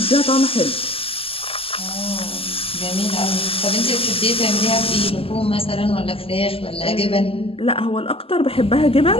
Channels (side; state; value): right; late; 0.27 ms